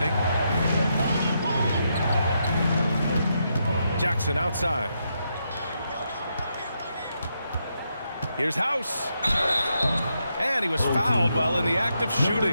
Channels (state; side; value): inverted; both; correlation -0.81